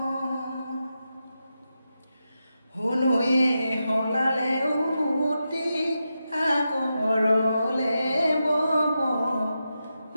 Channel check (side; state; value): both; inverted; correlation -0.88